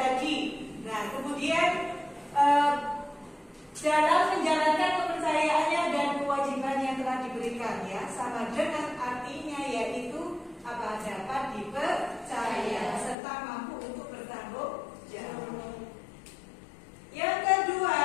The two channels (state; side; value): drops out; right; at 13.2 s